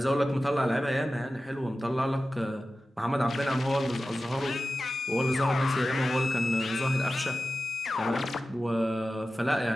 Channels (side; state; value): both; normal; correlation 0.94